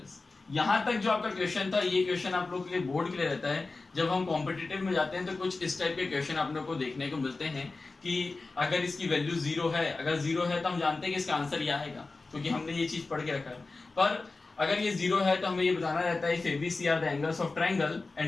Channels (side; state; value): right; quieter; 3.6 dB